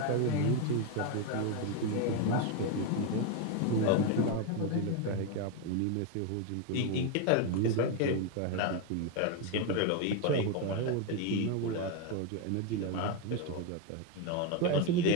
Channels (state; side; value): different; both; correlation 0.02